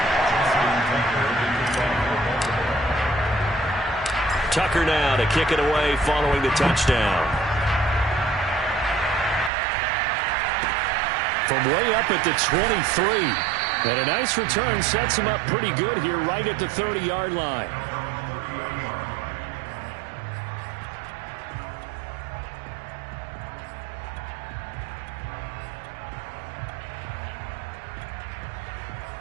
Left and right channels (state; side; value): drops out; left; at 9.5 s